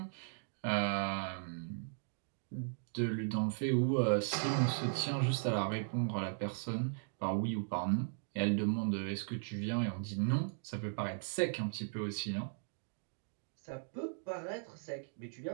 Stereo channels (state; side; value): silent; left; digital silence